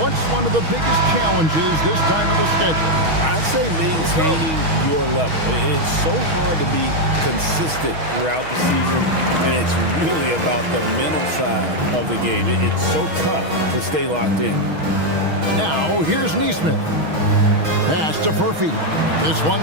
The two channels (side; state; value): left; late; 6.3 ms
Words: one of the biggest challenges this time of the schedule? I'd say maintaining your level. It's so hard to be consistent throughout the season, and it's really about the mental side of the game. It's so tough to stay locked in. Now, here's Nesmith. Pass to Murphy. This